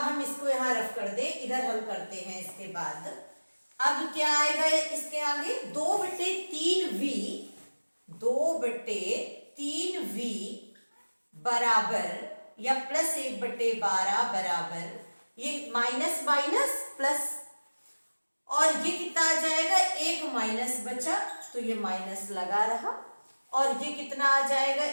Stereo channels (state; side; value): inverted; both; correlation -1.00